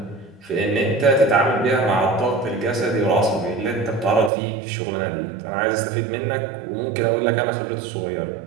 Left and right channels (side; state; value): left; drops out; at 4.3 s